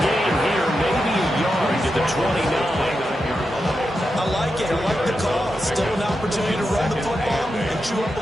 game here, maybe a yard to the 29. I like it. I like the call. Still an opportunity to run the football and chew up a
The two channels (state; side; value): normal; both; correlation 0.88